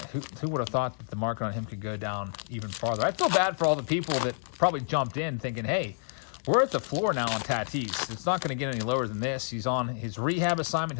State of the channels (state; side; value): silent; right; digital silence